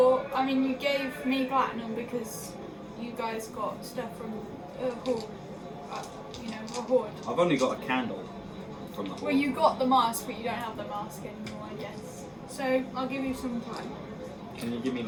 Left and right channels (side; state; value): both; identical; correlation 1.00